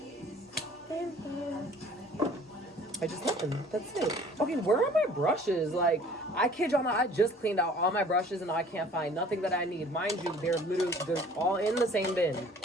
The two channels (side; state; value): both; normal; correlation 0.51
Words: I just love them. That's it. Okay, where are my brushes? Like, I kid y'all not, I just cleaned out all my brushes and I can't find nothing that I need. Mind you, they're all in the same bin.